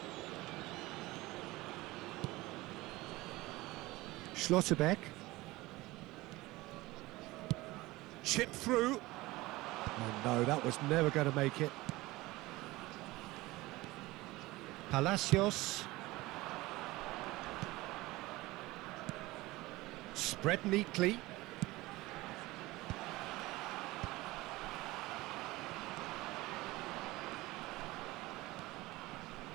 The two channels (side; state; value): left; quieter; 19.9 dB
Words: Schlotterbeck. Chip through. Oh no, that was never going to make it. Palacios. Spread neatly.